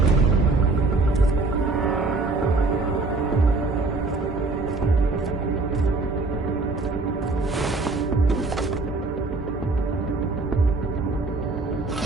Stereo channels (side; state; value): left; quieter; 3.5 dB